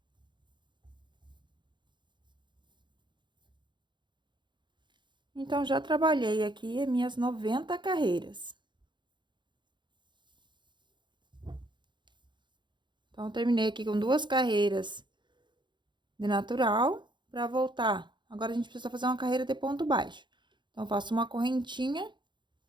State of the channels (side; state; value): left; late; 0.22 ms